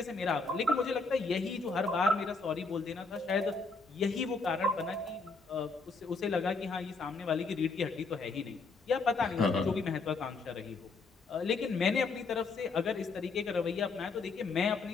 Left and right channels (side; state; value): right; quieter; 4.0 dB